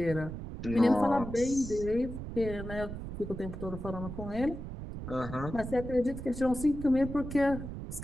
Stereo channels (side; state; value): right; noise; rumble, 8 dB below the sound